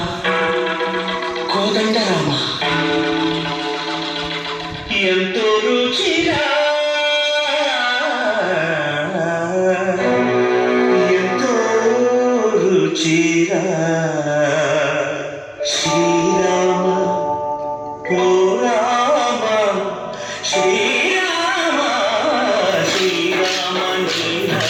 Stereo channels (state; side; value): identical; both; correlation 1.00